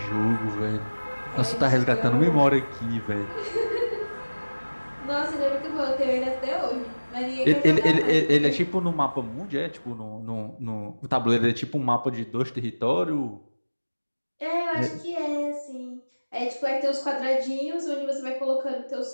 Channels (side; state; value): both; inverted; correlation -1.00